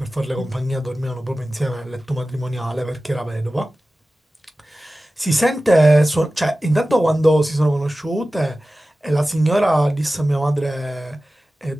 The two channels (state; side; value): normal; both; correlation 0.96